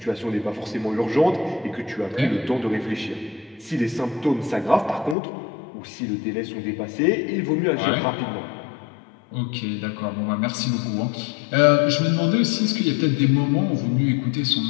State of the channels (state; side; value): drops out; right; at 5.2 s